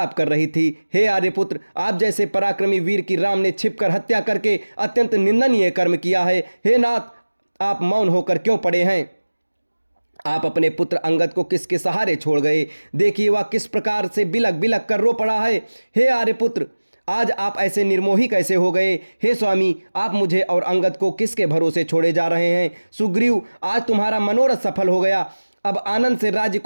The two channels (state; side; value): inverted; both; correlation -1.00